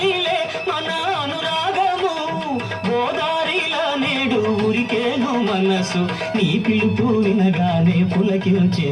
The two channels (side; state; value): both; identical; correlation 1.00